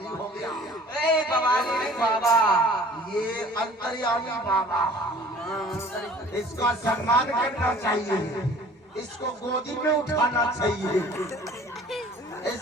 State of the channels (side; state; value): both; normal; correlation 0.49